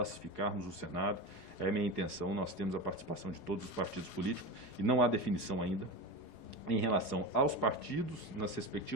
o Senado. É a minha intenção, nós temos a participação de todos os partidos políticos e não há definição ainda em relação aos partidos, nas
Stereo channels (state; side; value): late; right; 4.8 ms